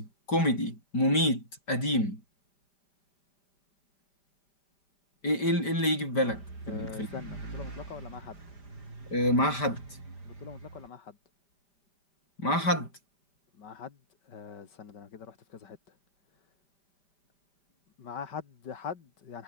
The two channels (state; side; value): late; right; 5.1 ms